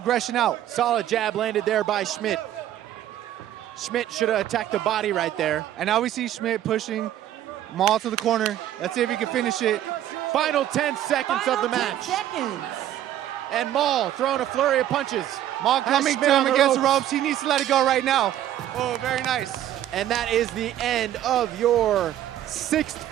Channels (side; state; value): left; quieter; 12.1 dB